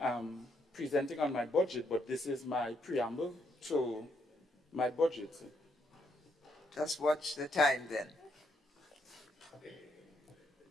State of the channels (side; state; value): both; normal; correlation 0.75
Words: am presenting on my budget, but this is my preamble to my budget. Just watch the time then.